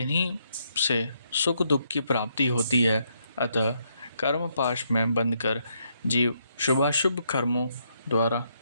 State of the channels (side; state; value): both; inverted; correlation -0.75